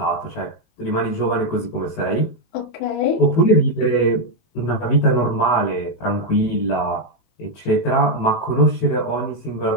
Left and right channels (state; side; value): late; right; 18 ms